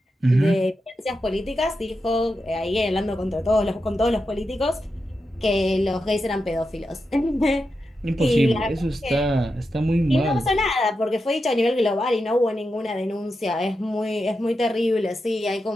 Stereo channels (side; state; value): both; normal; correlation 0.88